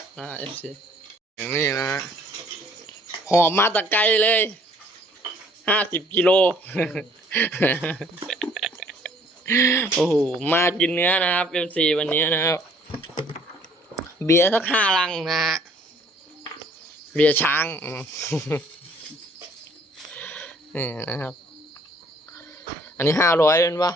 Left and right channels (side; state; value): both; normal; correlation 0.59